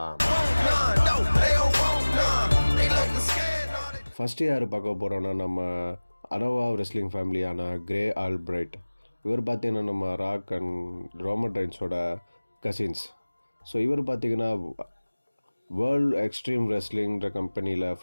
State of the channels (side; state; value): both; inverted; correlation -1.00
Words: ஃபஸ்ட்டு யார் பார்க்க போகிறோன்னா, நம்ம அனோவா ரெஸ்லிங் ஃபேமிலியான கிரே ஆல்பிரைட். இவர் பார்த்திங்கன்னா நம்ம ராக் அண்ட் ரோமன் ரெயின்ஸோட கசின்ஸ். ஸோ இவர் பார்த்திங்கன்னா வேர்ல்டு எக்ஸ்ட்ரீம் ரெஸ்லிங்கிற கம்பெனியில்